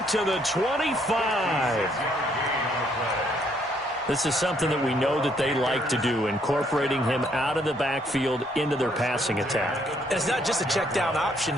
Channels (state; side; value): normal; both; correlation 0.69